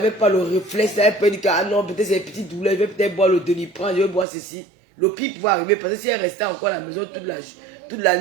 pas le réflexe, elle peut dire que ah non, peut-être c'est une petite douleur, je vais peut-être boire le Doliprane, je vais boire ceci. Le pire pouvait arriver parce que si elle restait encore à la maison toute la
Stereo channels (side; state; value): left; drops out; at 4.2 s